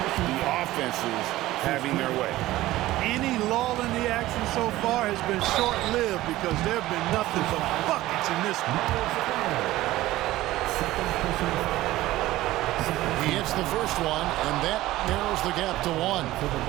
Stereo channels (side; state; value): left; quieter; 16.4 dB